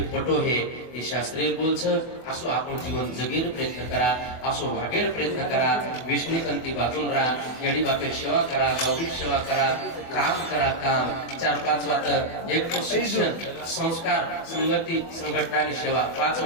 पटो हे हे शास्त्रीय बोलच असो आपण जीवन जगेर प्रयत्न करा असो वागेर प्रयत्न करा विष्णुकंती बाजून राहा येडी बापेर सेवा करा गौरी सेवा करा काम 4-5 वात एक तो शिक्षण संस्कार संगती संघटना आणि सेवा 5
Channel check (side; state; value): right; late; 24 ms